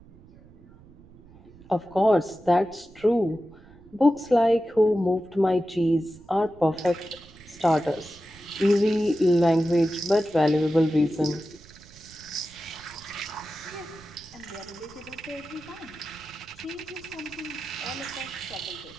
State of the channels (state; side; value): noise; right; rumble, 23 dB below the sound